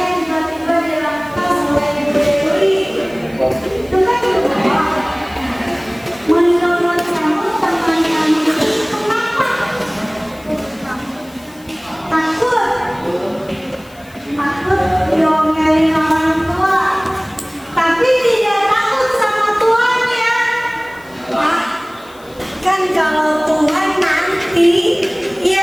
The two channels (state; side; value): noise; left; hiss, 26 dB below the sound